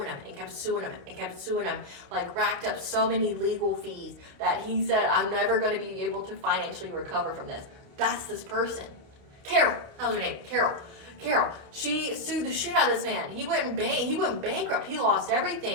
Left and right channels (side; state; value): left; late; 29 ms